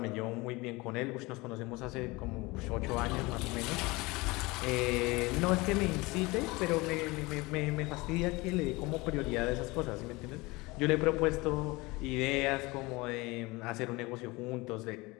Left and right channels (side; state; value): right; quieter; 23.1 dB